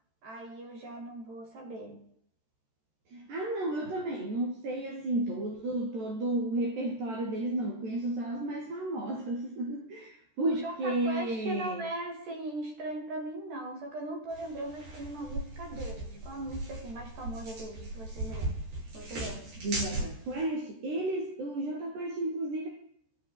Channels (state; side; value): late; left; 13 ms